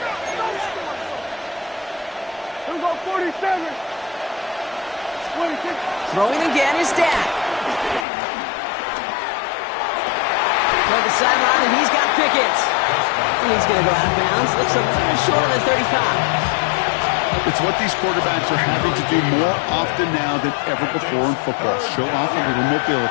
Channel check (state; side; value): drops out; right; at 8.1 s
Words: Throwing again is Dak. Toward the sideline, and he's got Pickett. And he's going to go out of bounds. Looks a little short of the 35. It's what these quarterbacks are having to do more often now than ever before in football. Show off a little